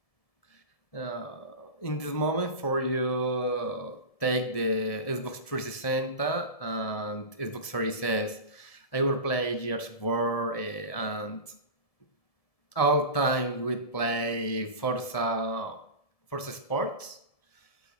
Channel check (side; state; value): right; late; 1.7 ms